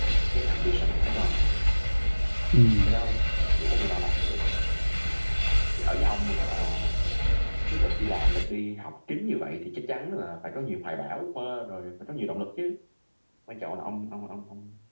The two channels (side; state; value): both; inverted; correlation -1.00